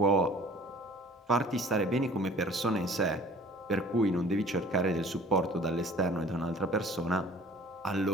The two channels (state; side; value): normal; both; correlation 0.50